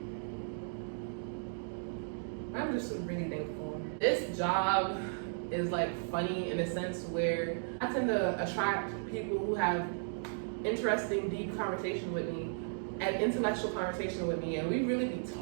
I'm just really thankful. This job is like funny in a sense where I tend to attract people who have interesting, deep conversation with me and intellectual conversation with me, and we really be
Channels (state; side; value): silent; left; digital silence